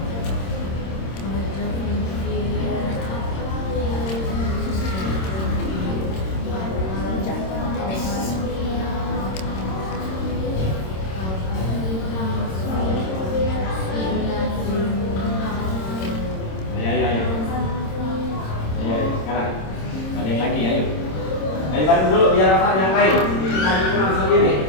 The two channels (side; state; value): right; late; 26 ms